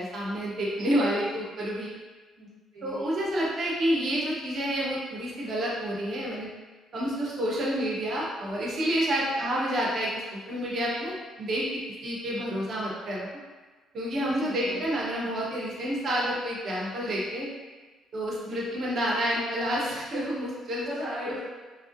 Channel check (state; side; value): normal; both; correlation 0.72